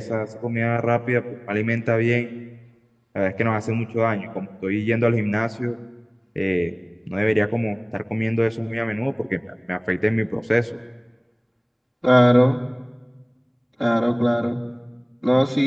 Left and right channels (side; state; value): both; identical; correlation 1.00